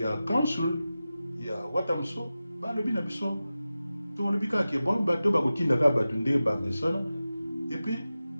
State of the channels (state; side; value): inverted; both; correlation -0.94